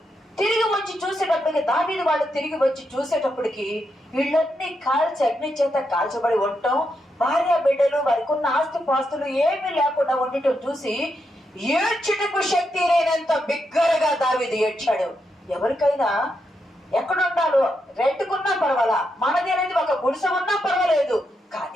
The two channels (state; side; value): normal; both; correlation 0.83